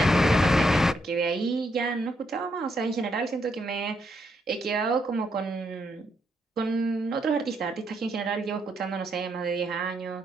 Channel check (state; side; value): normal; both; correlation 0.77